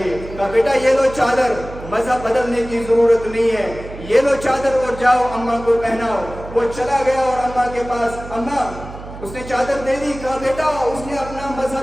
کہا بیٹا یہ لو چادر, مذہب بدلنے کی ضرورت نہیں ہے, یہ لو چادر اور جاؤ اماں کو پہناؤ. وہ چلا گیا اور اماں کے پاس, اماں اس نے چادر دے دی. کہا بیٹا اس نے اپنا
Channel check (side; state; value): right; noise; hum, 13 dB below the sound